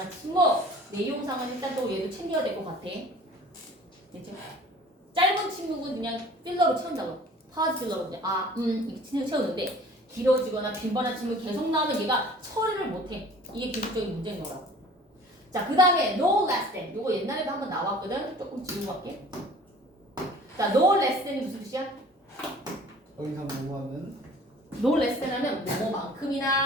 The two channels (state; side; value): normal; both; correlation 0.47